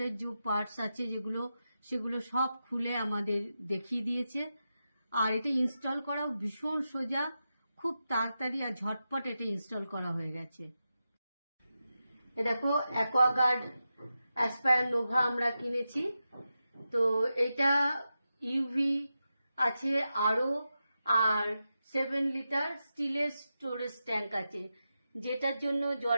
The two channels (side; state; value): both; inverted; correlation -0.90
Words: যে পার্টস আছে সেগুলো সব খুলে আমাদের দেখিয়ে দিয়েছে। আর এটা ইনস্টল করাও ভীষণ সোজা, খুব তাড়াতাড়ি আর ঝটপট এটা ইনস্টল করা হয়ে গেছে। এ দেখো অ্যাকোয়াগার্ড অ্যাসপায়ার নোভা আমরা কিনেছি। তো এটা ইউভি আছে আরও, আর 7 লিটার স্টিলের স্টোরেজ ট্যাঙ্ক আছে, যেটার জন্য